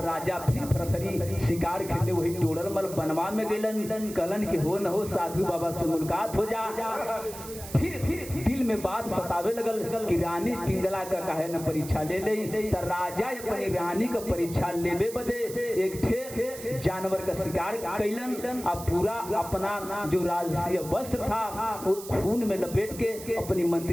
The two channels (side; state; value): right; noise; hiss, 13 dB below the sound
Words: राजा फिर भरथरी शिकार खेले वही टोड़ल मल बनवा में गलन कलन कि हो न हो साधु बाबा से मुलाकात हो जा। फिर दिल में बात सतावे लगल कि रानी पिंगला का काहे न परीक्षा ले ले। तो राजा अपनी रानी का परीक्षा लेबे बदे एक ठे जानवर का शिकार कैलन। अब पूरा अपना जो राजकीय वस्त्र था वो खून में लपेट के अपनी